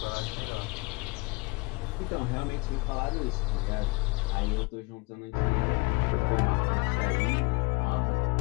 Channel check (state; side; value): quieter; right; 26.4 dB